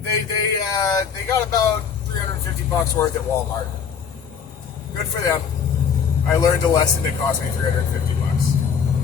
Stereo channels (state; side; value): quieter; right; 6.8 dB